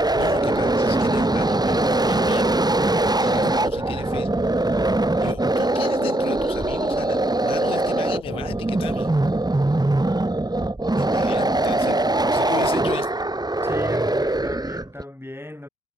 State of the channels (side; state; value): both; normal; correlation 0.74